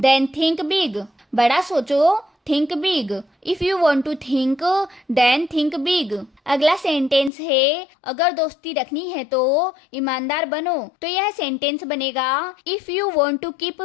think big. बड़ा सोचो think big. If you want to think then think big. अगला सेंटेंस है अगर दोस्ती रखनी है तो ईमानदार बनो, तो यह सेंटेंस बनेगा if you want to keep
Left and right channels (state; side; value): drops out; right; at 7.3 s